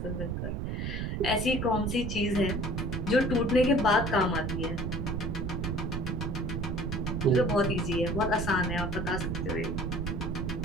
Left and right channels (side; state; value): right; noise; rumble, 2 dB below the sound